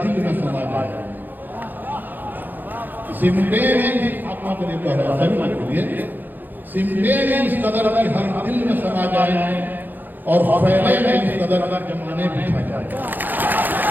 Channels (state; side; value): late; left; 0.087 ms